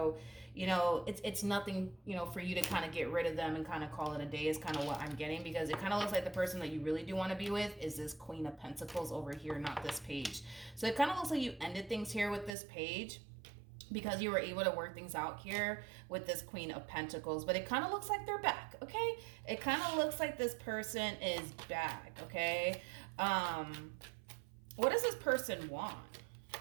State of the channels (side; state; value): left; drops out; at 12.6 s